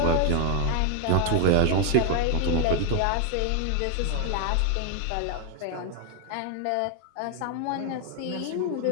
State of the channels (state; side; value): different; both; correlation 0.01